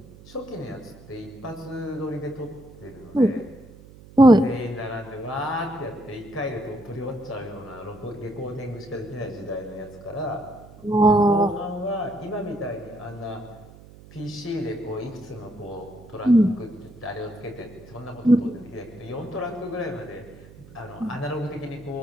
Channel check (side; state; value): right; noise; hum, 20 dB below the sound